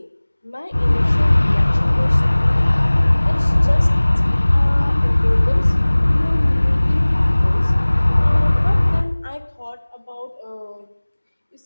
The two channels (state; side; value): inverted; both; correlation -1.00